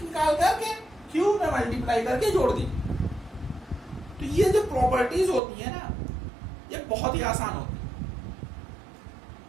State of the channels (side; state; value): left; drops out; at 5.4 s